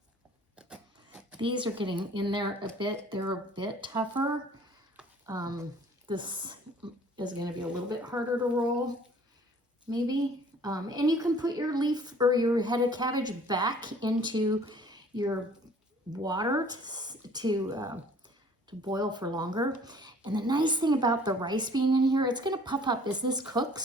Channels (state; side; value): normal; both; correlation 0.53